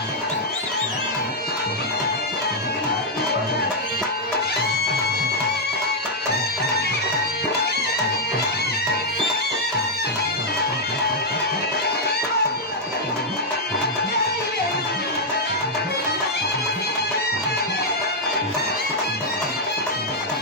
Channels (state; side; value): normal; both; correlation -0.02